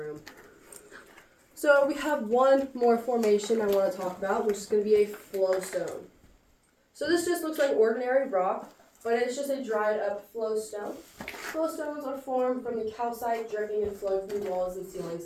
So we have one more formation I want to talk about, which is going to be a flowstone. So this just looks like ordinary rock, but it's just a dried up flowstone. Flowstones are formed from the calcite dripping and flowing through walls and ceilings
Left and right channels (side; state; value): both; identical; correlation 1.00